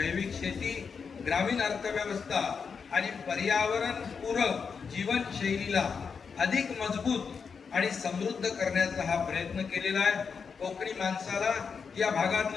शेती, ग्रामीण अर्थव्यवस्था आणि पर्यावरण पूरक जीवनशैलीला अधिक मजबूत आणि समृद्ध करण्याचा हा प्रयत्न केलेला आहे. कोकणी माणसाला, या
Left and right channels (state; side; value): quieter; right; 5.8 dB